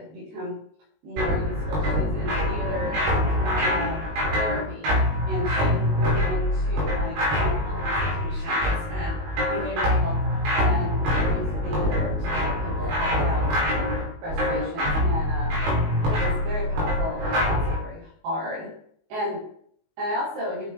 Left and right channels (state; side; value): late; left; 19 ms